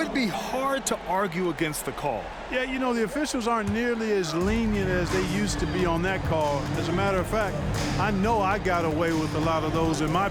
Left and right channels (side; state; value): both; identical; correlation 1.00